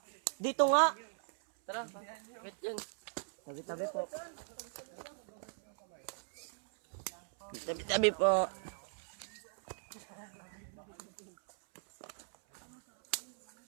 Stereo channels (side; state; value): left; silent; 52 dB below the other